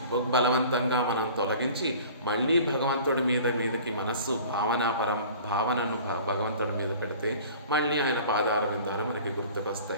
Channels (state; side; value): inverted; both; correlation -0.45